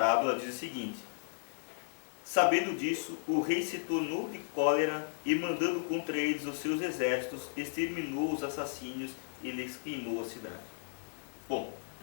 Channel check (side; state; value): right; silent; digital silence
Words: diz o seguinte: sabendo disso, o rei se tornou de cólera e, mandando contra eles os seus exércitos, exterminou os assassínios e lhes queimou a cidade. Bom,